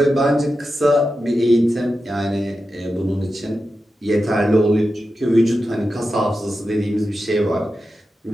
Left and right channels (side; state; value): both; normal; correlation 0.91